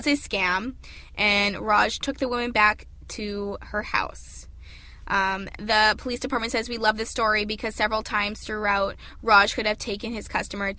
a scam, and Raj took the woman back to her house. The police department says, we love this story because several times throughout, Raj could have taken his customer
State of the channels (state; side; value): identical; both; correlation 1.00